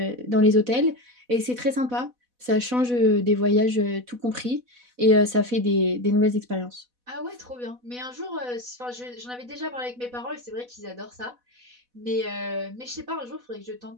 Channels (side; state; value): left; late; 4.1 ms